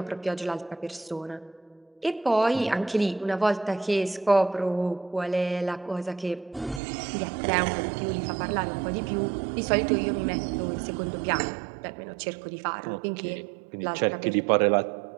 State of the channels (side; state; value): left; drops out; at 6.8 s